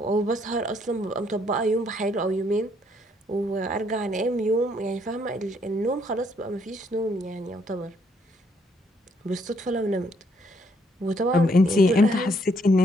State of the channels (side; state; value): both; normal; correlation 0.69